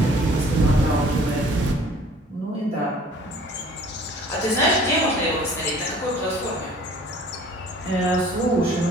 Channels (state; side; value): normal; both; correlation 0.51